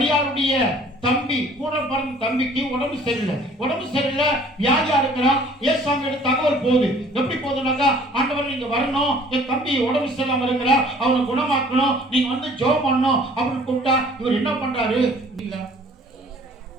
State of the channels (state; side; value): normal; both; correlation 0.53